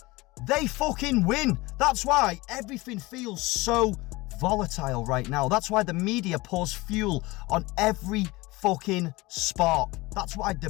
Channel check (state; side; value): quieter; right; 21.7 dB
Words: they fucking win. That's why everything feels so volatile right now. That's why the media pours fuel on every fucking spark. That's why